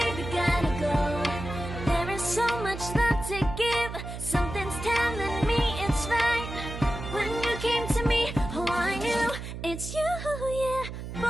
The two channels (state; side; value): noise; right; hum, 8 dB below the sound